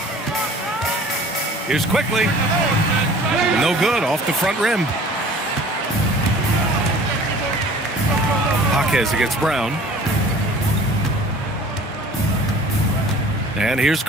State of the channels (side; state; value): both; normal; correlation 0.47